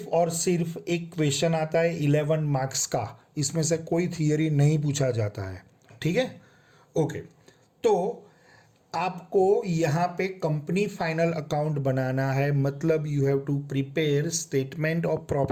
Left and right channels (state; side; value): identical; both; correlation 1.00